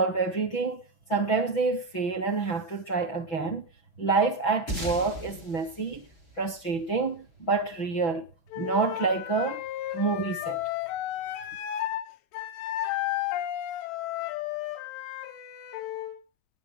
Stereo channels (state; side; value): late; right; 6.1 ms